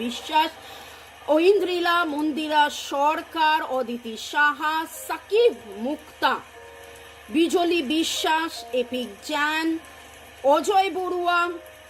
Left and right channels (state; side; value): identical; both; correlation 1.00